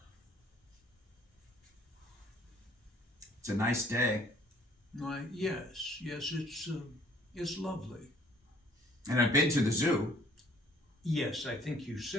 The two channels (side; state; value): both; normal; correlation 0.58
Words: It's a nice day. Why, yes, it's lovely. And I've been to the zoo. Yes, I think you